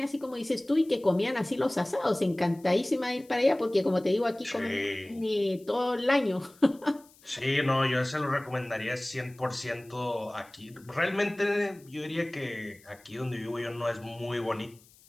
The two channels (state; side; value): noise; left; hiss, 27 dB below the sound